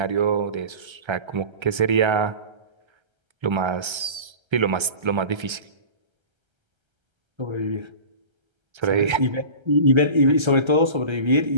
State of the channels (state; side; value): late; left; 1.3 ms